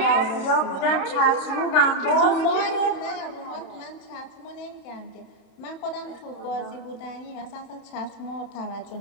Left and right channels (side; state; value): right; late; 32 ms